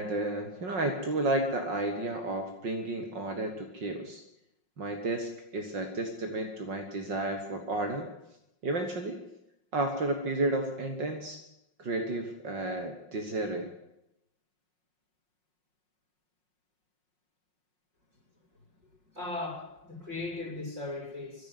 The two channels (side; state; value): left; late; 5.5 ms